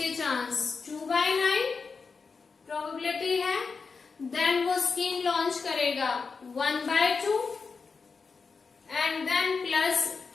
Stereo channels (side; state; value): right; quieter; 4.9 dB